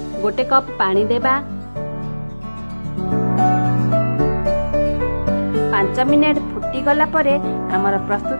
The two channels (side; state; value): both; inverted; correlation -1.00